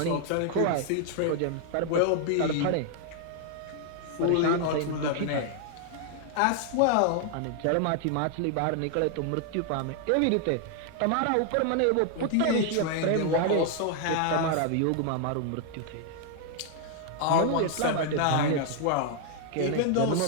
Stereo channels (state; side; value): different; both; correlation 0.00